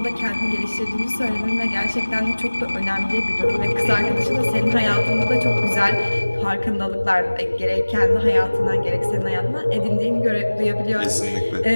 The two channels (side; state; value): both; inverted; correlation -1.00